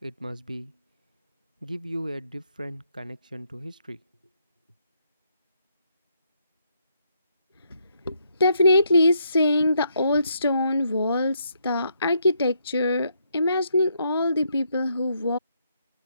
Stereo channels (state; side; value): inverted; both; correlation -0.75